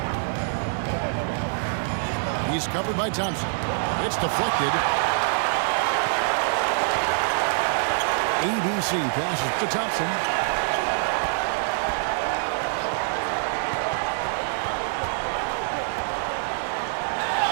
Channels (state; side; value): silent; left; digital silence